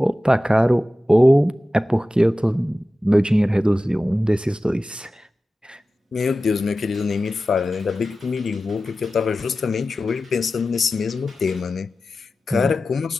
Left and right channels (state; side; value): normal; both; correlation 0.94